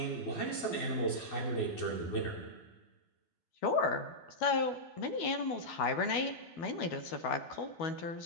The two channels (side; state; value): right; late; 12 ms